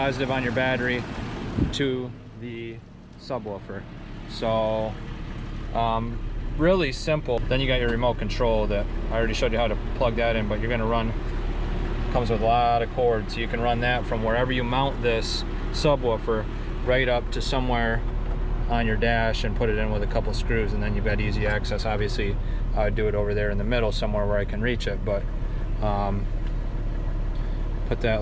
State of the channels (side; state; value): both; identical; correlation 1.00